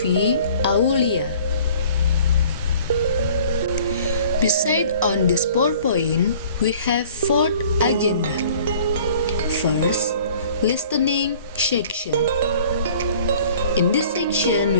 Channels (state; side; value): inverted; both; correlation -0.50